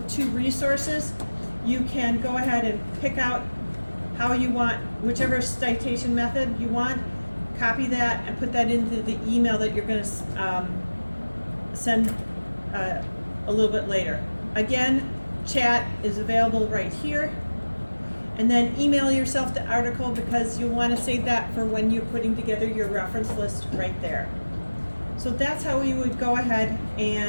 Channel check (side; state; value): both; inverted; correlation -1.00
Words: two resources, you can go ahead and pick out how you want, whichever citation method you want, copy that and put that into the email that you're going to send a little bit later. Again, chat is available right here. And then email yourself the article, because you'll want to save that for when you're putting together your reference list right there. So that's how we would go ahead